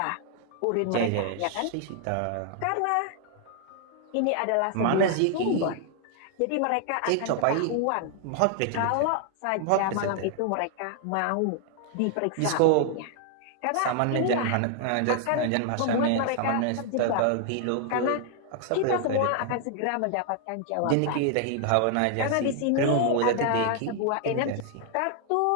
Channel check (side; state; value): both; different; correlation 0.00